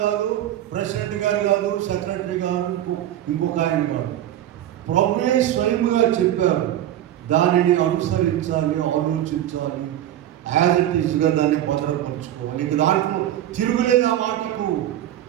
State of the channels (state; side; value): quieter; left; 12.2 dB